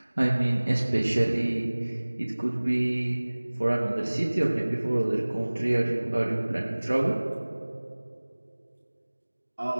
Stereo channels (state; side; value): inverted; both; correlation -1.00